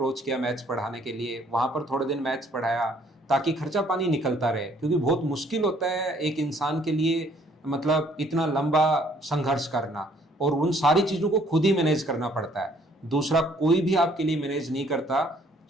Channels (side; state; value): both; normal; correlation 0.62